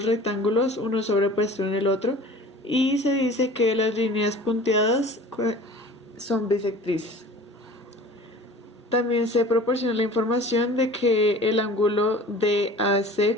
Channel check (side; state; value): both; normal; correlation 0.43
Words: rectángulos, uno sobrepuesto en el otro, y se dice que las líneas punteadas son bisectrices. También se proporciona la información de que el ángulo DAC